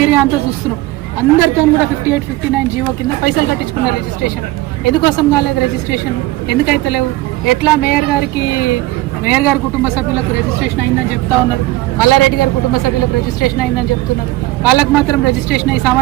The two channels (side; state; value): left; quieter; 18.0 dB